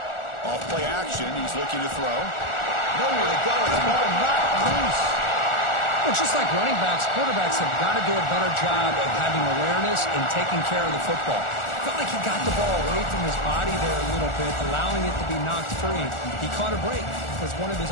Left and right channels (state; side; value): late; right; 1.4 ms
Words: Off play action. He's looking to throw. Nowhere to go. The ball knocked loose. Well, just like running backs, quarterbacks have got to do a better job of having awareness and taking care of the football. Felt like he got the ball away from his body there a little bit, allowing it to be knocked free. He caught a break because one of his